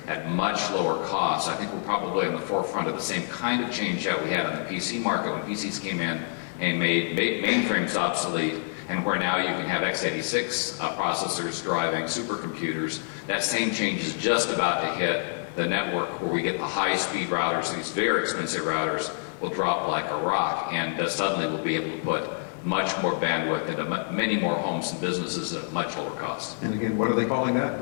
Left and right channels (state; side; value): silent; right; 60 dB below the other